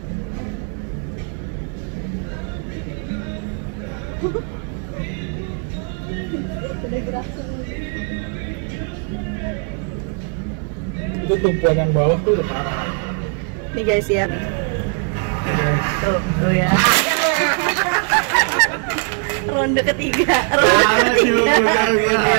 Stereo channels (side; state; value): left; quieter; 36.7 dB